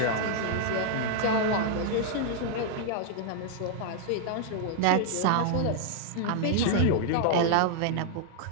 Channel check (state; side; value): different; both; correlation 0.00